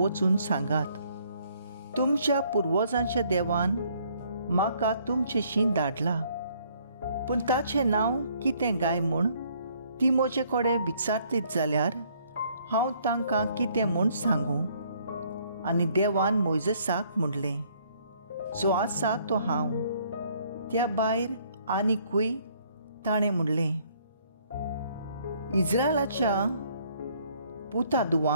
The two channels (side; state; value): both; inverted; correlation -0.64